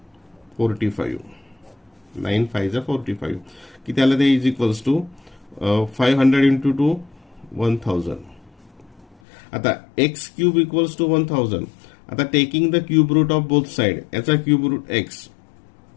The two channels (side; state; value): right; drops out; at 9.2 s